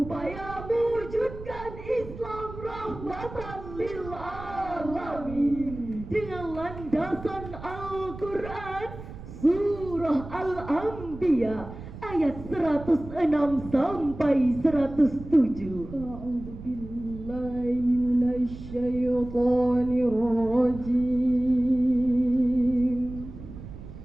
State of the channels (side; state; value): right; noise; rumble, 13 dB below the sound